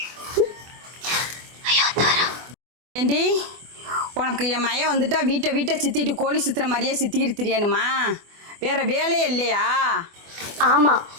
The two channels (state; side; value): late; left; 24 ms